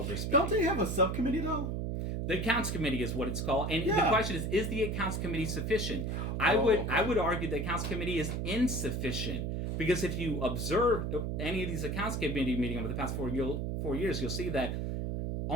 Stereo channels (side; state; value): right; noise; hum, 1 dB below the sound